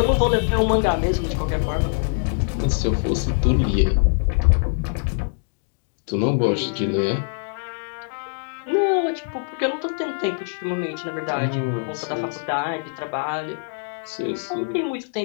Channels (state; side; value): silent; right; 63 dB below the other